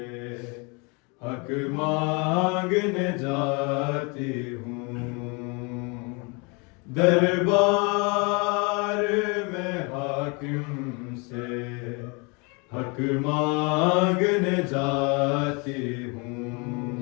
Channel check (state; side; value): quieter; right; 30.9 dB